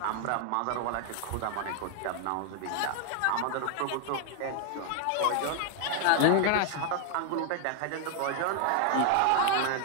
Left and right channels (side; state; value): both; different; correlation 0.00